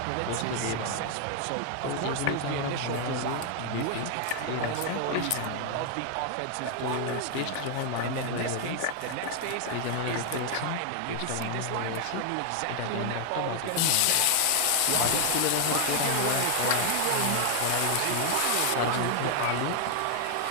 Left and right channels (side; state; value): both; different; correlation 0.00